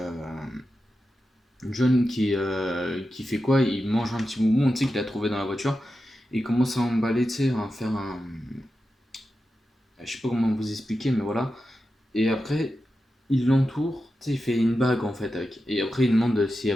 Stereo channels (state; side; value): normal; both; correlation 0.91